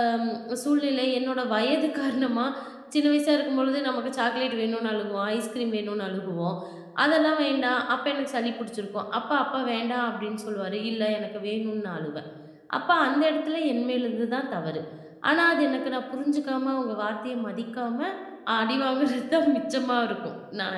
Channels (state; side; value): identical; both; correlation 1.00